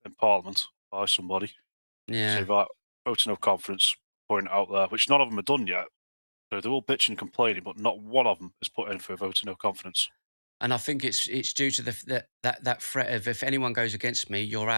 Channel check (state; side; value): inverted; both; correlation -1.00